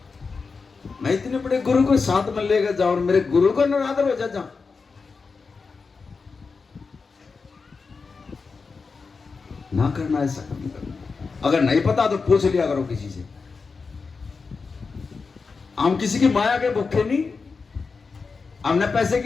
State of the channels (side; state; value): right; quieter; 4.7 dB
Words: मैं इतने बड़े गुरु को साथ में लेकर जाऊं और मेरे गुरु का निरादर हो जा, ना करना, ऐसा नहीं करना। अगर नहीं पता तो पूछ लिया करो किसी से। हम किसी की माया के भूखे नहीं, हमने पैसे